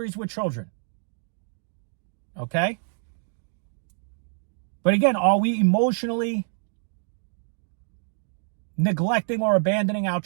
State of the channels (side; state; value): left; silent; digital silence